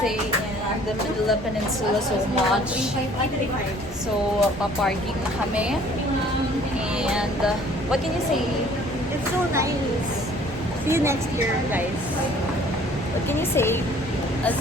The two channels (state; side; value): normal; both; correlation 0.55